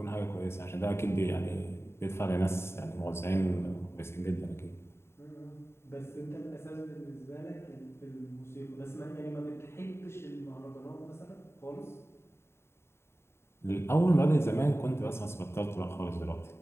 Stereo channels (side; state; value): right; late; 0.12 ms